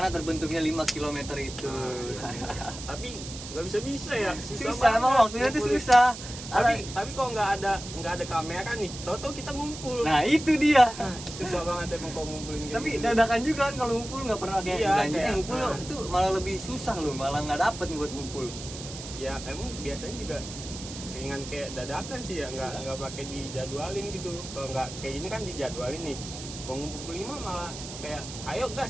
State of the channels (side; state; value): right; noise; hiss, 11 dB below the sound